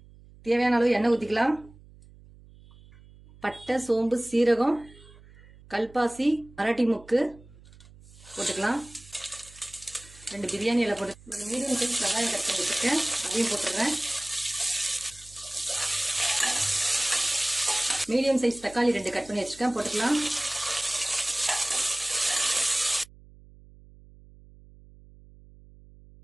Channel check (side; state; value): right; noise; hum, 23 dB below the sound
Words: தேவையான அளவு எண்ணெய் ஊற்றிக்கலாம். பட்டை, சோம்பு, சீரகம், கல்பாசி, மராட்டி முக்கு போட்டுக்கலாம். 2 பிரியாணி இலை போட்டு ஒரு மீடியம் சைஸ் வெங்காயம் கட் பண்ணி வச்சுருக்கேன். அதையும் போட்டுடுறேன். மீடியம் சைஸ் தக்காளி 2 கட் பண்ணி வச்சுருக்கேன், போட்டுக்கலாம்.